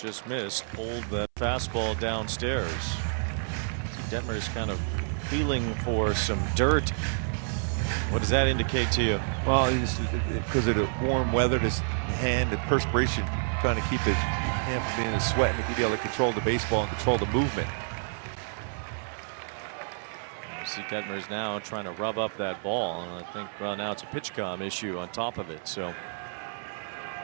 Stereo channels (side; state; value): left; silent; 59 dB below the other